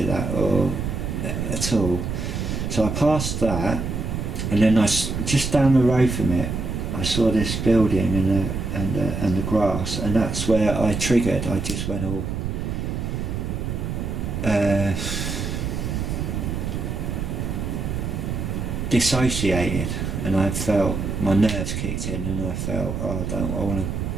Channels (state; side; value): noise; right; rumble, 3 dB below the sound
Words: that or at all. So I passed that, and then just down the road from it, I saw this building and the grass, and that's where I triggered. I just went all dissociated, and I felt my nerves kicked in, and I felt, I want